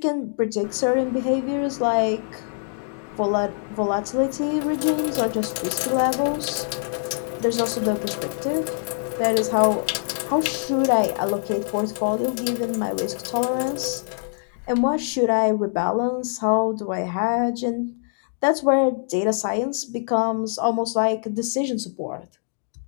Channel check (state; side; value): silent; right; digital silence